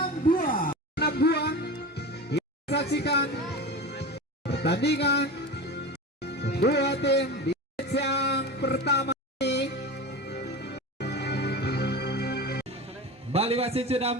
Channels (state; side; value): normal; both; correlation 0.29